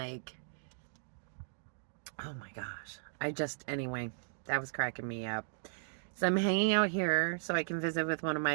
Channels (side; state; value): left; silent; digital silence